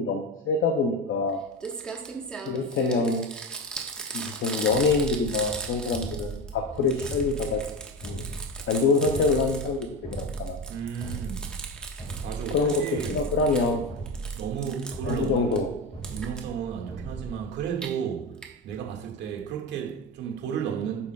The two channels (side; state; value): both; normal; correlation 0.21